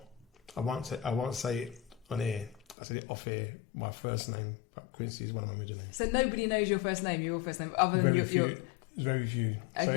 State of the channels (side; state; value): right; drops out; at 2.8 s